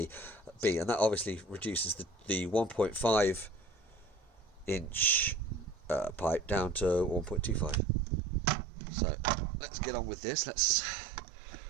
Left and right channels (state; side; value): drops out; left; at 7.8 s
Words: and that obviously reduces the 1.5 inch pipe down to 1.25. So let's get on with this. Let's